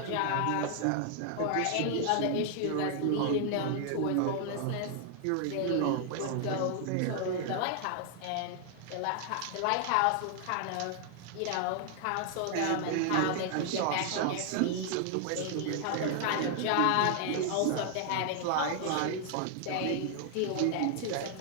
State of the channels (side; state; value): both; different; correlation 0.00